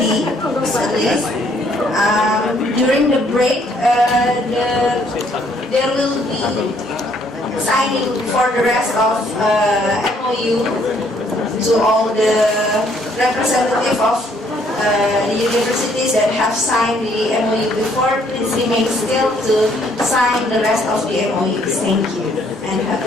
at least. During the break, there will be signing for the rest of MOU to all the representative of the universities that have signed the MOU before. Please remain still to sign the rest of the MOUs. Thank you. And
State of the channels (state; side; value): normal; both; correlation 0.66